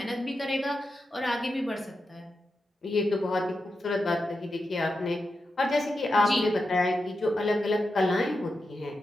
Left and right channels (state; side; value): normal; both; correlation 0.89